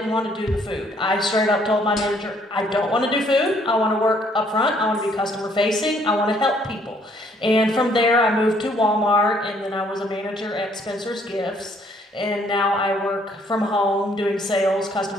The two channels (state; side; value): normal; both; correlation 0.65